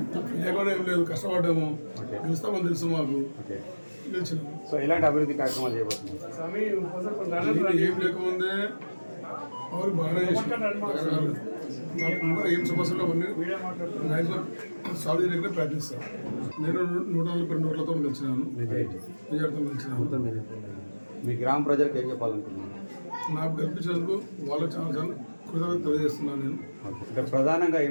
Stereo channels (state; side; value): inverted; both; correlation -1.00